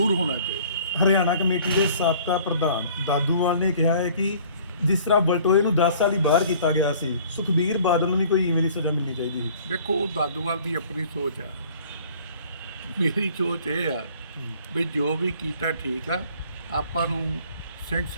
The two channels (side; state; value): both; inverted; correlation -0.52